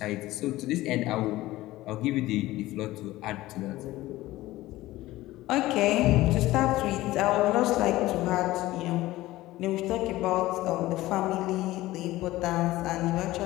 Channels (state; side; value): quieter; right; 17.1 dB